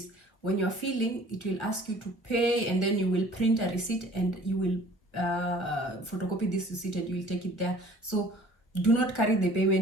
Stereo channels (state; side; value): late; right; 1.0 ms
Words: When you're filling, it will ask you to pay, and then you will print a receipt and you will photocopy this receipt and you will take it there. So do not carry the